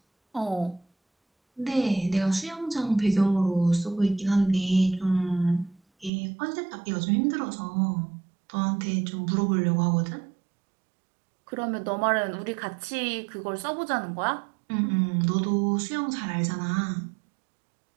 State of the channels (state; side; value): drops out; left; at 6.1 s